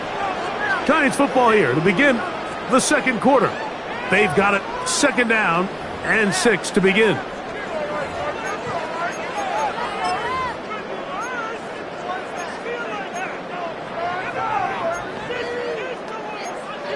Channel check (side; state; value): both; identical; correlation 1.00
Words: Giants football here to begin the 2nd quarter. They've got it 2nd down and 6 to begin.